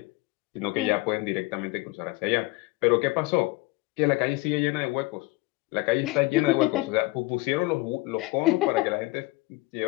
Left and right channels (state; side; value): quieter; right; 22.6 dB